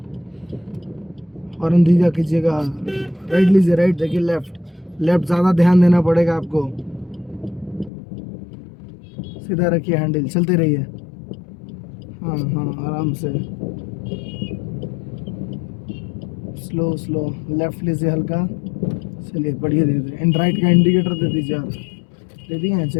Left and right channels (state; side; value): drops out; right; at 7.9 s